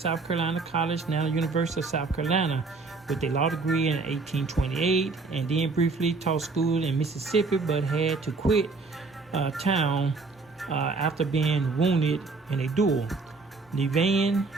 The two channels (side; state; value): left; quieter; 3.9 dB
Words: Carolina College, now the University of South Carolina, with a law degree in 1828, and then briefly taught school in Mississippi, but had to quit town after being wounded in a duel. Levain